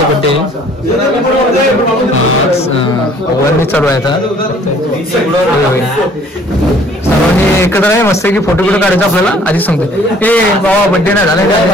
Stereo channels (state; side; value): normal; both; correlation 0.56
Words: बर्थडे वरनी चालू आहे आता। सर्वांनी एकत्र आहे मस्त की फोटो काढायचा आपल्याला। आधी सांगतो ए बाबा बर्थडे नाही झाला